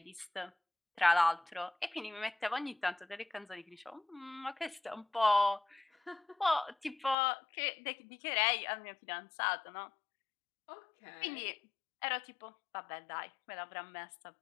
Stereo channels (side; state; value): right; drops out; at 7.2 s